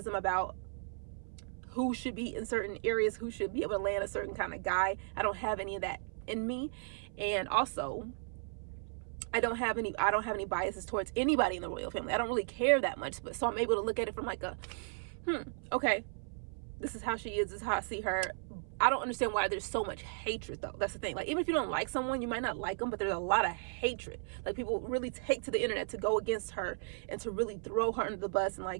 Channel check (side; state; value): left; silent; 54 dB below the other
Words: about who should be in certain areas, who should be able to land a certain kind of guy. I don't have any of that in me. And also, I don't have any biases towards anybody in the royal family. I don't really care that much, but so I'm able to look at it from like a okay, this is how she is, this is how I see her. I don't understand why there's so much hatred, though. That's the thing. Like, even if you don't like someone, you might not like them, but there's a lot of hatred. Like, people really take to the internet to go against her and to really throw her under the bus and